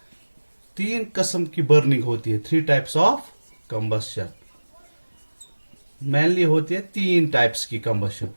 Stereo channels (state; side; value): inverted; both; correlation -1.00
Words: तीन किस्म की burning होती है. Three types of combustion. Mainly होती है तीन टाइप्स की combustion.